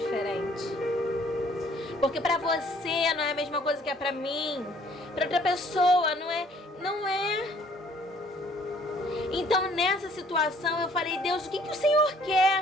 Porque pra você não é a mesma coisa que é pra mim. Pra outra pessoa não é. Então, nessa situação, eu falei: Deus, o que o Senhor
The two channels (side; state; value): both; normal; correlation 0.59